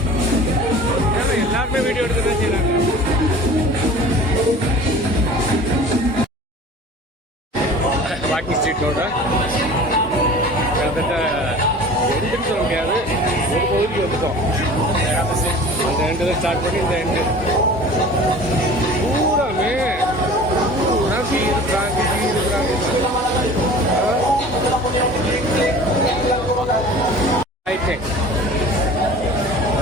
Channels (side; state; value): both; normal; correlation 0.42